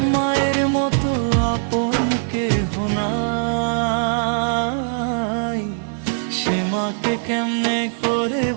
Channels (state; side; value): silent; left; digital silence